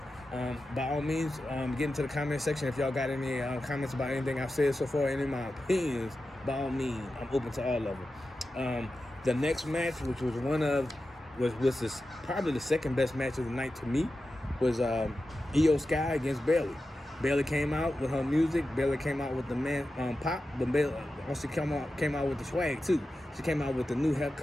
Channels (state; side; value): normal; both; correlation 0.92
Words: By all means, get into the comment section if y'all got any comments about anything I've said so far, any of my opinions. By all means, I'm open to all of them. The next match, which was probably the second best match of the night to me, was Io Sky against Bayley. Bayley came out with her music. Bayley came out with the pop, but Bayley also came out with the swag too. She came out with the new